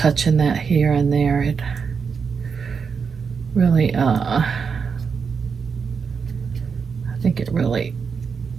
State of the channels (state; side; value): quieter; left; 5.9 dB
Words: that here and there. It really, I think it really